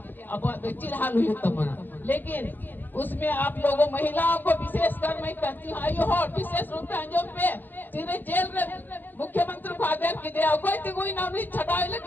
अब तो चील हाल हुई तो मना, लेकिन उसमें आप लोगों महिलाओं को विशेष कर मैं कहती हूँ आयु होट विशेष रूप से अंजुम पे सीधे जेल में मुख्यमंत्री को आदेश की दिया, कोई तिगुई ना उन्हें छटाई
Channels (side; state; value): right; late; 0.089 ms